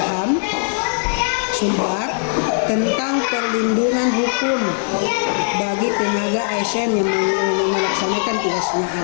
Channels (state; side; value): silent; right; digital silence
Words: Sumbar tentang perlindungan hukum bagi tenaga ASN yang melaksanakan tugasnya